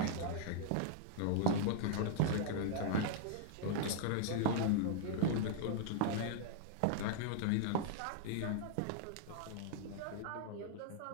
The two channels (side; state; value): both; different; correlation -0.01